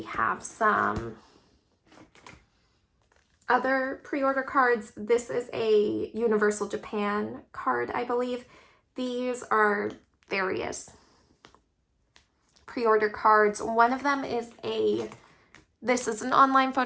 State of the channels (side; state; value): both; identical; correlation 1.00